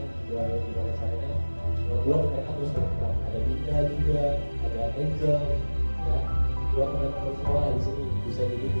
udah ada gimana caranya membuat mereka terus berkembang. Ada Dinda juga, ada Angel ya, dua teman-teman semua di sini bisa jadi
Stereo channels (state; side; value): inverted; both; correlation -1.00